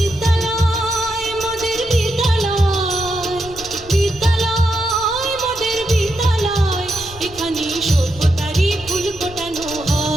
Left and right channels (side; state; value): left; noise; rumble, 18 dB below the sound